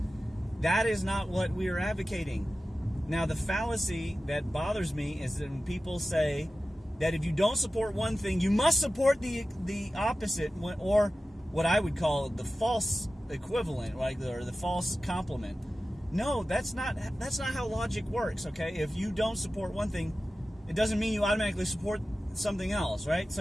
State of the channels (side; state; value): both; normal; correlation 0.94